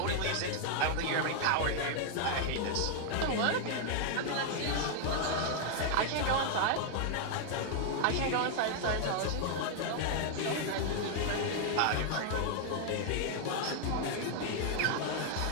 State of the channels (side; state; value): both; different; correlation 0.00